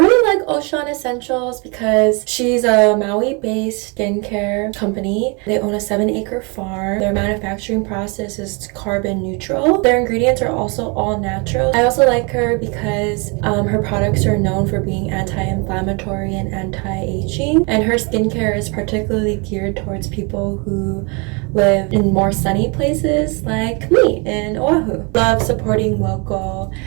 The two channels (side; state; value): left; quieter; 31.6 dB